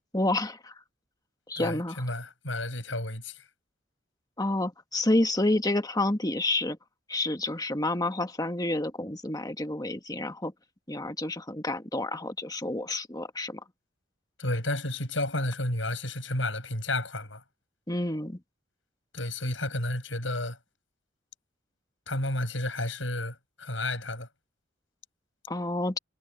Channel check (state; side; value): normal; both; correlation 0.56